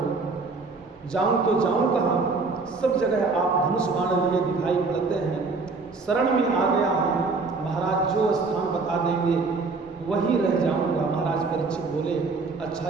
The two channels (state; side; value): quieter; left; 4.1 dB